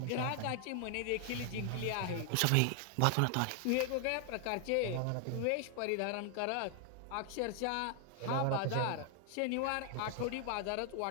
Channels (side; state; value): both; different; correlation 0.00